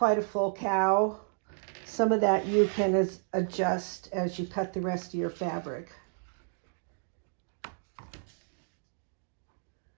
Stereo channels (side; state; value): left; silent; digital silence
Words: a full cow. Some of that you can adjust as you cut the rest of your fabric.